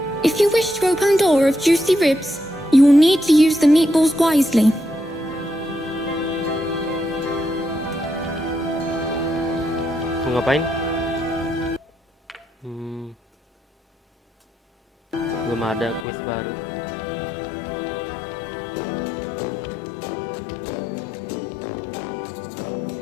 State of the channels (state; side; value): drops out; right; at 16.1 s